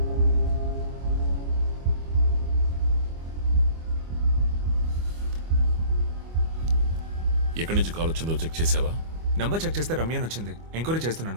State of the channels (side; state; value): left; late; 25 ms